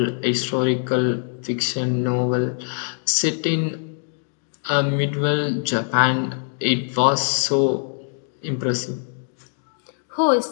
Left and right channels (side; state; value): right; silent; digital silence